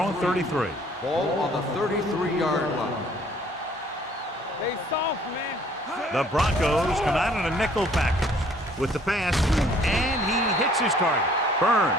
33. Ball on the 33-yard line. They soft, man. The Broncos come out in a nickel package with the pass, and he hits his target.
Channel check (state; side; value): normal; both; correlation 0.58